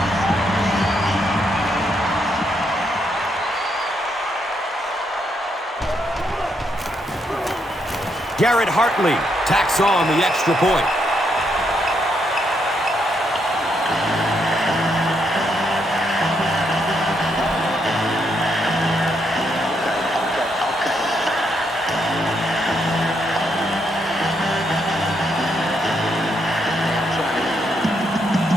Garrett Hartley tacks on the extra point.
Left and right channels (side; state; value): both; normal; correlation 0.77